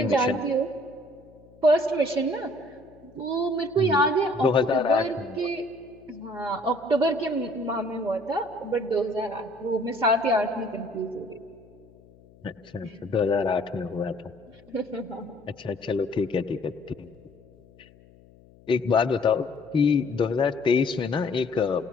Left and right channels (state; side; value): noise; left; hum, 26 dB below the sound